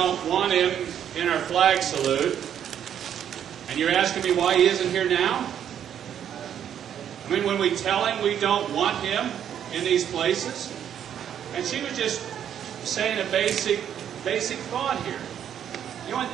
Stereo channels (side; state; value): left; quieter; 9.4 dB